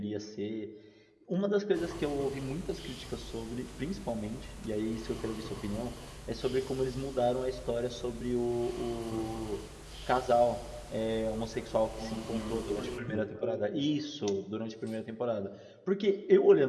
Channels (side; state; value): both; identical; correlation 1.00